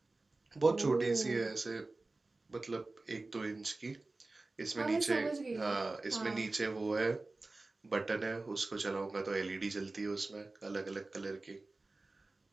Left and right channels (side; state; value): left; quieter; 3.3 dB